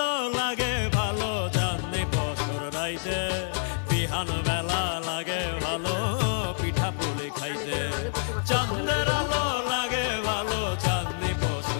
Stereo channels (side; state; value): right; silent; digital silence